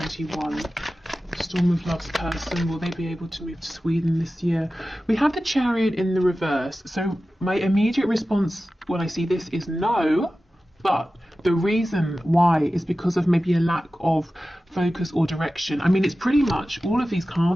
Storm of Love's person, will they be able to move to Sweden this year? We have the Chariot in the reverse, so my immediate response when I see this is no, but the reason why is because of maybe a lack of focus or direction. I mean, it's pretty much all of these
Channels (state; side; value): normal; both; correlation 0.95